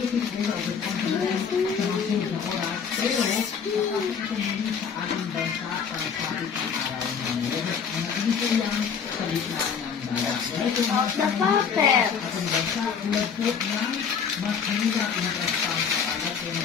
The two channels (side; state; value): right; quieter; 6.7 dB